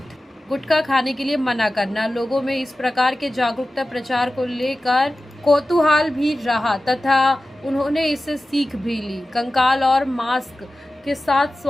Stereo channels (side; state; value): both; normal; correlation 0.95